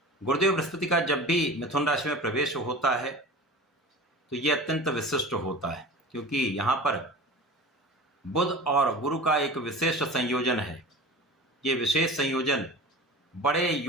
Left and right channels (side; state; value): both; normal; correlation 0.35